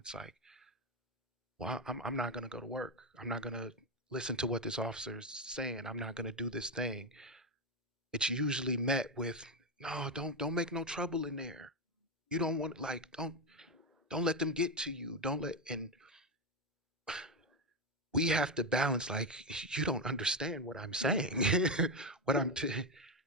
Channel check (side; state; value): both; normal; correlation 0.10